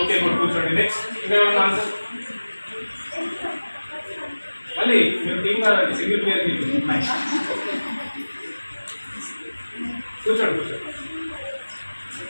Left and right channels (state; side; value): inverted; both; correlation -1.00